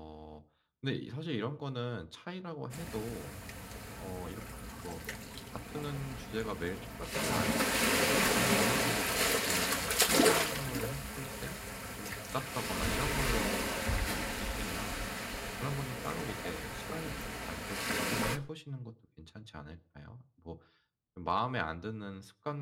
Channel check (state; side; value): identical; both; correlation 1.00